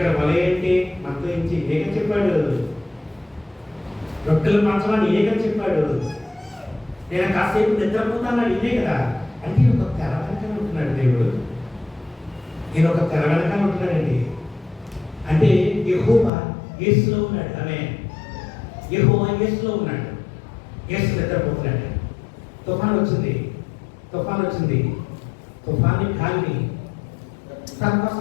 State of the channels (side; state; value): right; drops out; at 16.3 s